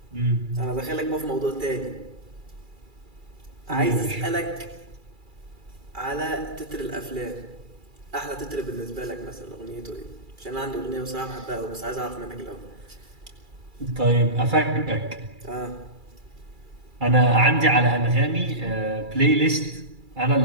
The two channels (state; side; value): late; left; 2.3 ms